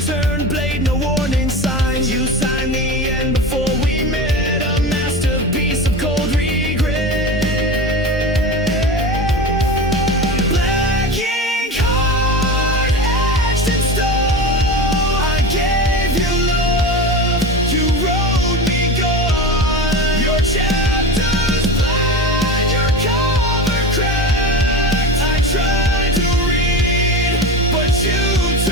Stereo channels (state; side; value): normal; both; correlation 0.28